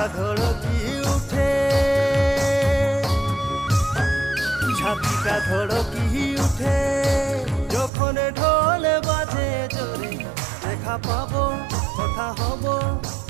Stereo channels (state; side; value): drops out; left; at 7.9 s